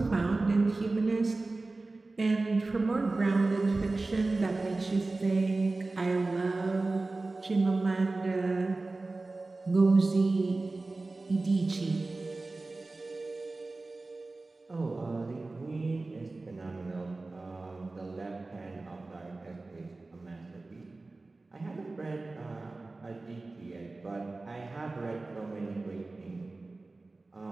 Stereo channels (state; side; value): quieter; left; 3.3 dB